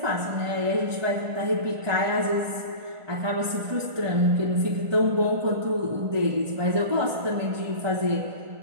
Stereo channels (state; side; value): late; left; 1.5 ms